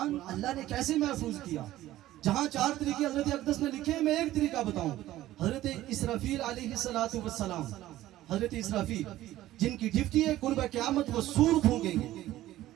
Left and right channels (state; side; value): quieter; left; 14.8 dB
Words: اللہ نے کیسے محفوظ کیا. جہاں 4 طریقے حضرت اقدس نے لکھے ہیں، میں ایک طریقہ بتاؤں. حضرت اسرافیل علیہ السلام، حضرت اسرافیل جن کی ڈیوٹی ہے قرب قیامت وہ سور پھونکیں گے،